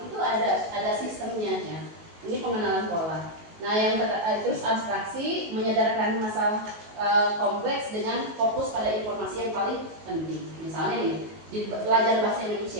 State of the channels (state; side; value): late; left; 19 ms